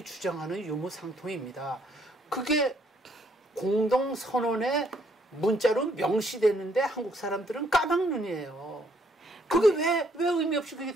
주장하는 유무상통입니다. 그게 공동선언에 문자로 명시됐는데 한국 사람들은 까막눈이에요. 그게 왜 의미 없이 그게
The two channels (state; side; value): normal; both; correlation 0.68